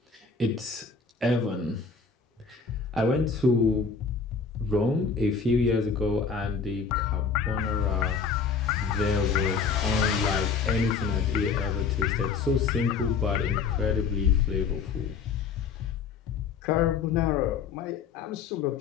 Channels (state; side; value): quieter; right; 5.4 dB